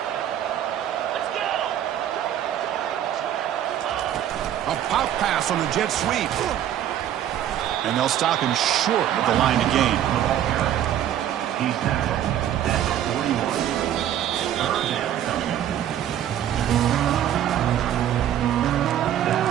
A pop pass on the jet sweep. And they'll stop him short of the line of gain. He's tackled at 41. Third down. That's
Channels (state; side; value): quieter; left; 11.0 dB